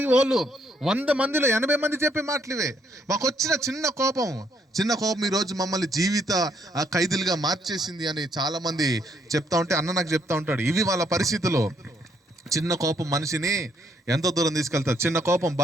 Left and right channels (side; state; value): both; normal; correlation 0.71